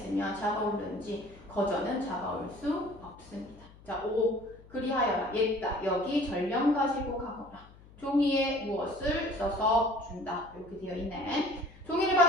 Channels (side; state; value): left; noise; hum, 22 dB below the sound